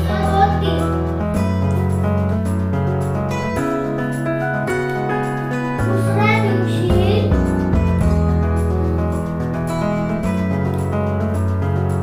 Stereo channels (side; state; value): both; identical; correlation 1.00